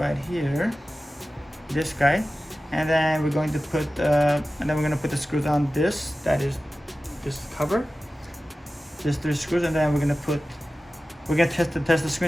here, this guy. And then we're going to put, the screws on this, that is this cover. Just 3 screws, and then we're gonna test the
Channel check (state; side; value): normal; both; correlation 0.95